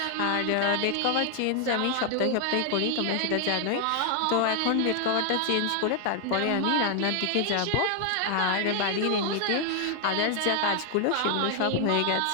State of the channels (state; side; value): different; both; correlation 0.00